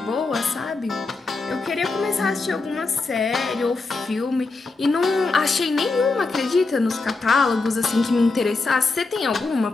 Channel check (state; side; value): quieter; right; 3.7 dB